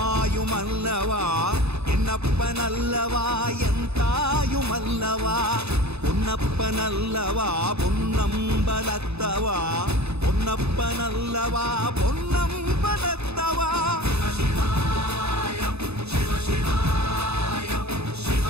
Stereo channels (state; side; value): late; left; 0.80 ms